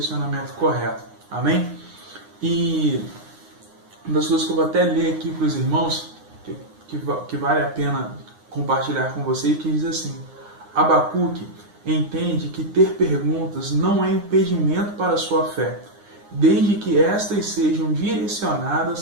correto. Amém? E uma das coisas que eu vou até ler aqui para os irmãos, que vale a pena compartilhar com vocês, que diz assim: Abacuque entende que ter perguntas não é impedimento para a sua fé, desde que estas sejam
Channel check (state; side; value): late; left; 9.7 ms